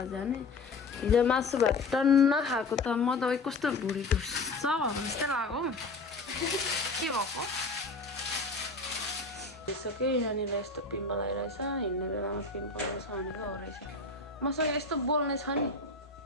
जाने हिजो मासु भात टन्न खाएको त म त कस्तो भुँडी ढुस्छ भएको जस्तै लाग्यो के भएको भइसक्यो यहाँनिर यस्तो पिम्पल आइरहेछ हिँड्ने बेलामा पिम्पल आउँछ भनेको हो रहेछ मसँग यस्तो बोल्ने छ नि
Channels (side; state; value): right; quieter; 3.6 dB